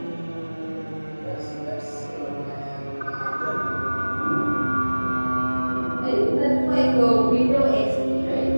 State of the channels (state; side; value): inverted; both; correlation -1.00